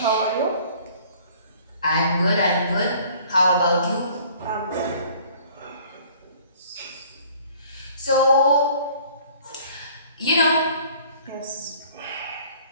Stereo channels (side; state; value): both; inverted; correlation -0.53